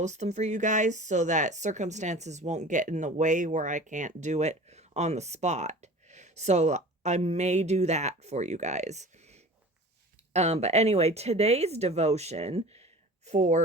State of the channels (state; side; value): normal; both; correlation 0.40